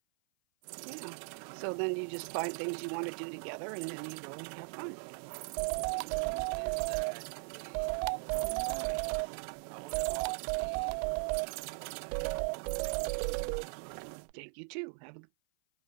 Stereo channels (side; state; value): left; silent; 52 dB below the other